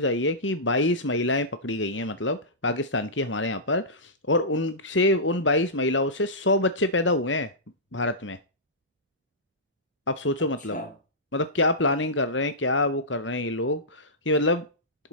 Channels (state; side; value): normal; both; correlation -0.17